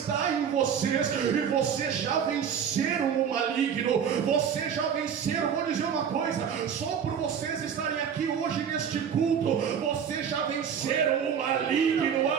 em vocês, e vocês já venceram o maligno, vocês já venceram. Vou dizer uma coisa: só por vocês estarem aqui hoje neste culto, vocês já venceram o maligno,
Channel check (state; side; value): quieter; left; 7.7 dB